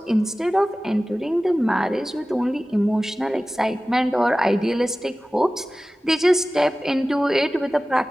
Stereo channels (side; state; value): both; normal; correlation 0.96